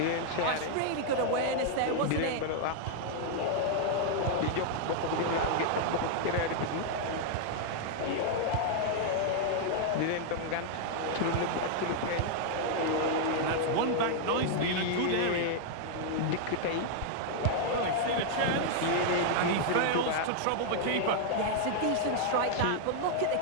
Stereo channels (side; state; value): both; different; correlation -0.01